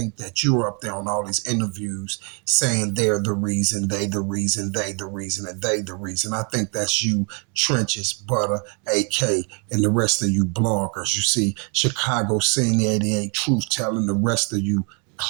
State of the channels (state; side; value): quieter; left; 36.5 dB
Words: that you're up there on all these interviews saying they're the reason, they the reason, they the reason, and they the reason. I think that's you, Trenches, Butter, AK, and the rest of you bloggers. You see, Chicago Scene 88, Truth Telling, the rest of you